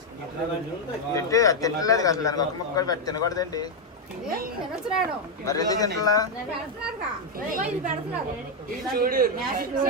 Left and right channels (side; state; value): both; normal; correlation 0.01